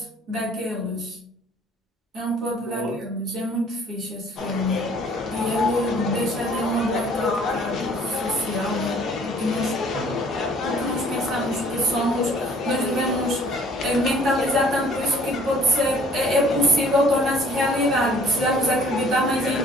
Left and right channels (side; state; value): both; normal; correlation 0.55